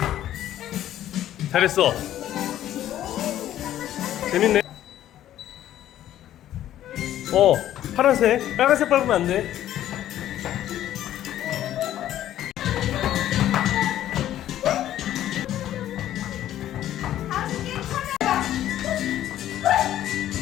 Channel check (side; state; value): right; quieter; 12.4 dB